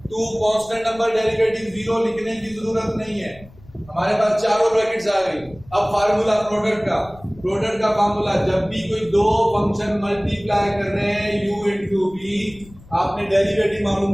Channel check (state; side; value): noise; left; rumble, 23 dB below the sound